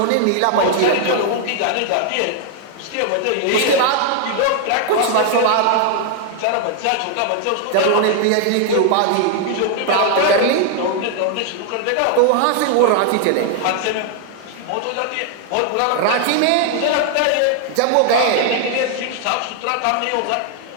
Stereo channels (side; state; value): both; different; correlation 0.00